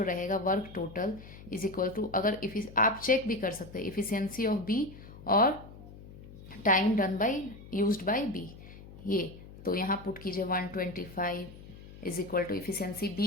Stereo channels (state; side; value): noise; left; hum, 17 dB below the sound